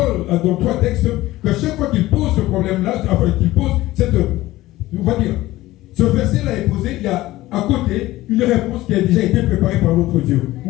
3 textes qu'à chaque fois qu'il pose ce problème-là, enfin qu'il pose cette, on va dire, ce verset-là est posé, il y a à côté une réponse qui a déjà été préparée par notre Dieu.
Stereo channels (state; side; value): quieter; right; 17.0 dB